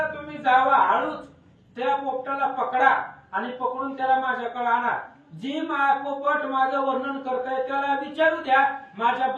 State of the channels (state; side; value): identical; both; correlation 1.00